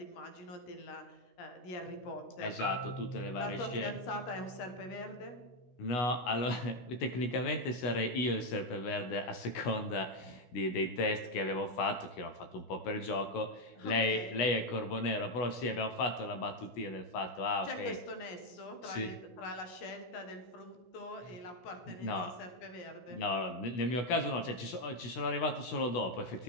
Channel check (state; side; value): late; right; 17 ms